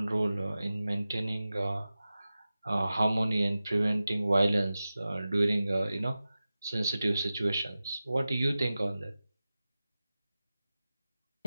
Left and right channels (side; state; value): both; inverted; correlation -0.95